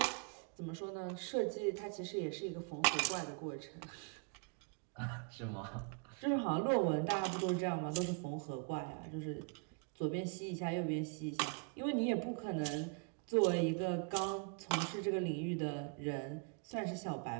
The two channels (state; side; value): quieter; left; 36.2 dB